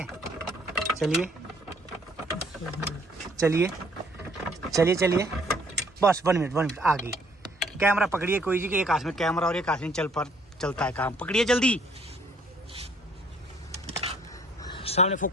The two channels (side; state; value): both; normal; correlation 0.62